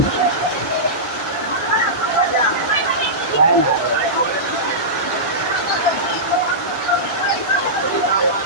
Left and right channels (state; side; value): normal; both; correlation -0.16